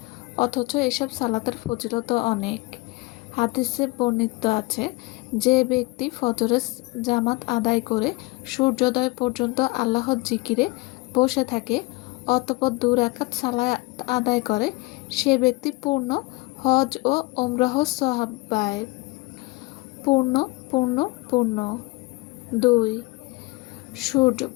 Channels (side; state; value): right; quieter; 23.8 dB